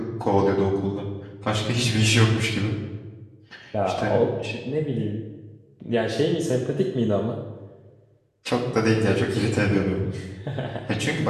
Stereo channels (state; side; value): identical; both; correlation 1.00